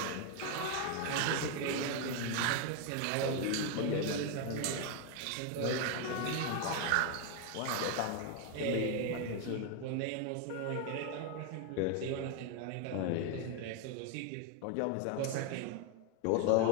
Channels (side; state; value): both; different; correlation 0.01